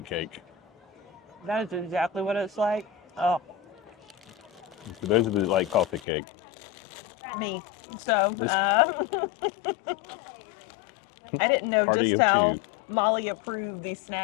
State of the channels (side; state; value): right; drops out; at 6.0 s